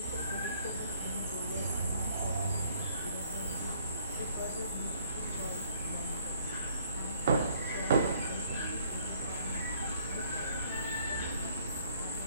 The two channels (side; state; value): both; inverted; correlation -0.63